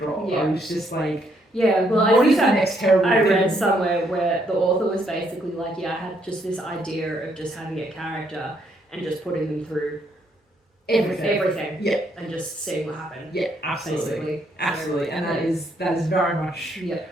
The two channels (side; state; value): both; normal; correlation 0.72